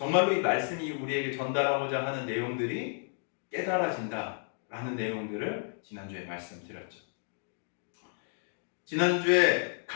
이 말씀이 우리에게 전달하고자 하는 내용들이 깨달아진다라는 내용들을 지난주에 말씀드렸죠. 지난주에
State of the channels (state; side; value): silent; right; 57 dB below the other